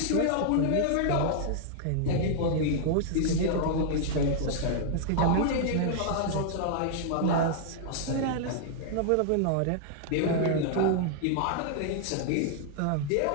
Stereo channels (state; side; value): different; both; correlation -0.01